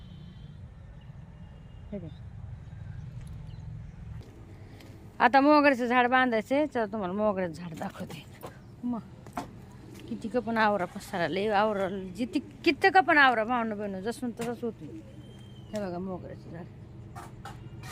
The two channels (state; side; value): identical; both; correlation 1.00